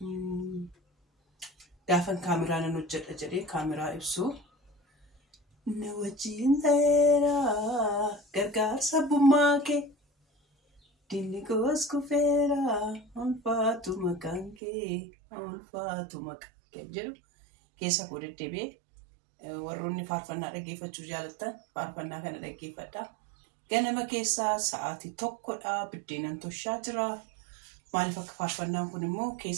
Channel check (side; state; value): left; drops out; at 14.6 s